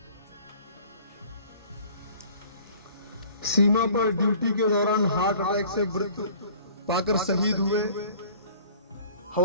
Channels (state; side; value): inverted; both; correlation -0.49